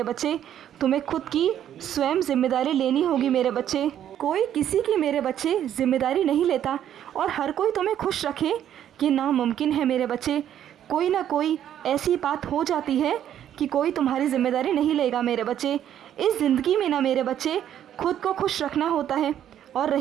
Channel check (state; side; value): quieter; left; 10.5 dB